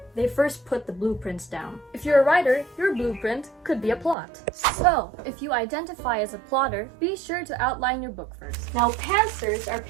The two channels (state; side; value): drops out; left; at 4.2 s